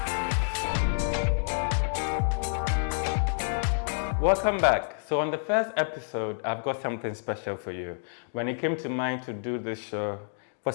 Welcome back. So on the first episode, I've got something special for you. When it came to mind to do this show, for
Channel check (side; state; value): right; silent; digital silence